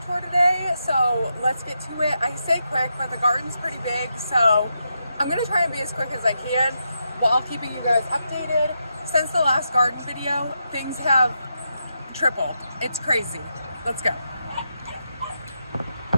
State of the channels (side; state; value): both; inverted; correlation -0.84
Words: tour today. So let's get to it. I say quick, but the garden's pretty big, so I'm going to try and be as quick as I can while keeping you guys updated. Since the last garden video, things have tripled. It's crazy. Let's go.